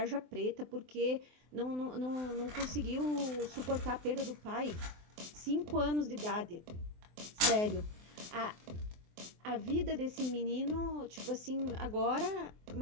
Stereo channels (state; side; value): late; left; 24 ms